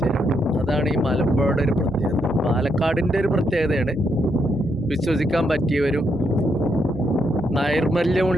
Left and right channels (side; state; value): both; normal; correlation 0.78